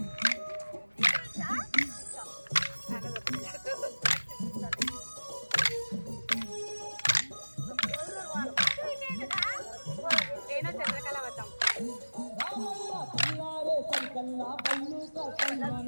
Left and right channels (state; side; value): inverted; both; correlation -1.00